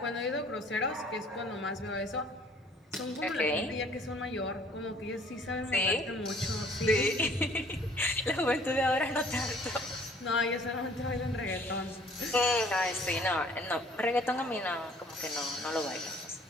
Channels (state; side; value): normal; both; correlation 0.56